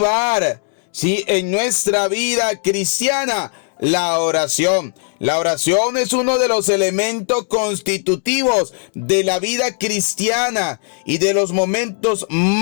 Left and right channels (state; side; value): silent; right; 56 dB below the other